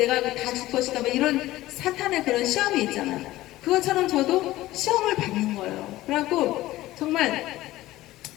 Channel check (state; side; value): quieter; right; 16.5 dB